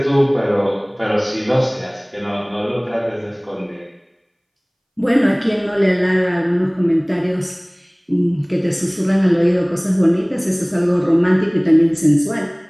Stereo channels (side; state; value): both; identical; correlation 1.00